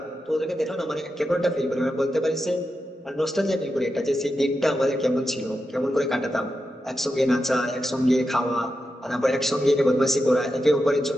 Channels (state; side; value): normal; both; correlation 0.89